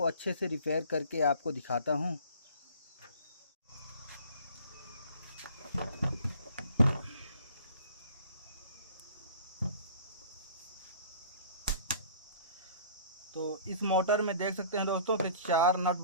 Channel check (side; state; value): both; inverted; correlation -0.49